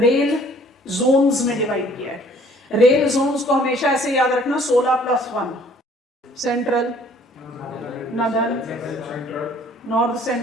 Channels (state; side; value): normal; both; correlation 0.57